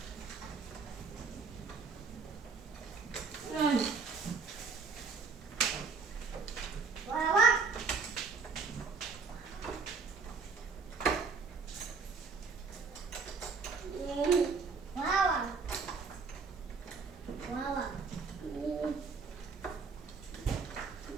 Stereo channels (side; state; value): left; quieter; 4.9 dB